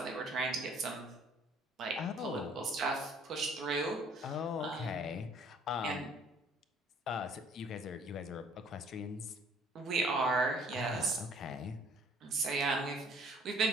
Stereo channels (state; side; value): normal; both; correlation 0.58